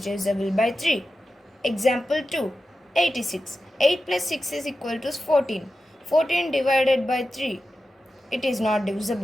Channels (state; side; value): normal; both; correlation 0.92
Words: divisible by 3. Example 2. 86. 8 plus 6 is equal to 14. 14 divided by 3. It is not